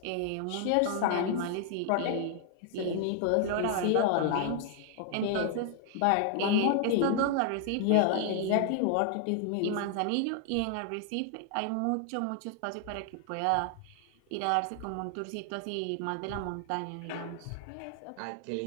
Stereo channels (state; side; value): different; both; correlation 0.00